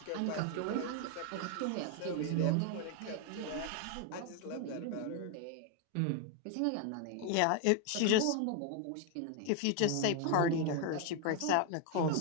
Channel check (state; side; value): different; both; correlation 0.01